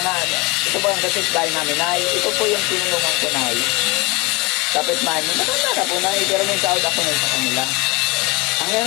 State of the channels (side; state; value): right; quieter; 25.6 dB